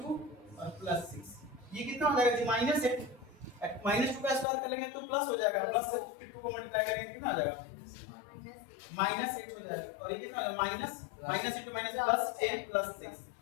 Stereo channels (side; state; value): right; drops out; at 4.5 s